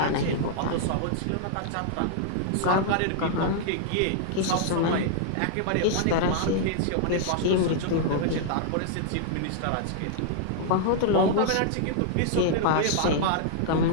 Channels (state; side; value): different; both; correlation -0.01